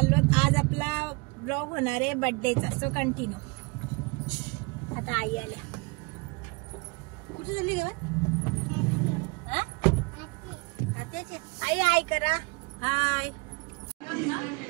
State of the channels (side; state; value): left; quieter; 28.6 dB